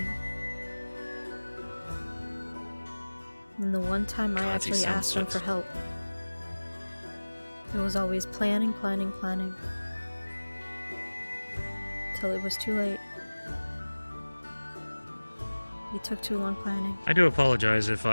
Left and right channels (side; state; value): both; inverted; correlation -1.00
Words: And the one time I actually asked him for help, it was always planning. Till it was too late. He took too long planning. I do apologize if